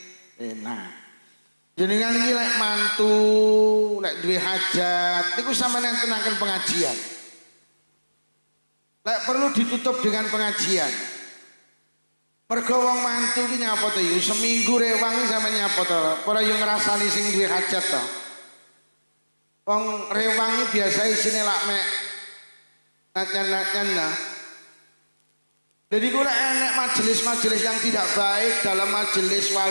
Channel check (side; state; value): both; inverted; correlation -1.00